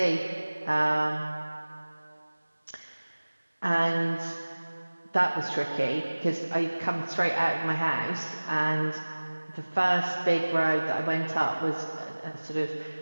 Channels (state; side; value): inverted; both; correlation -1.00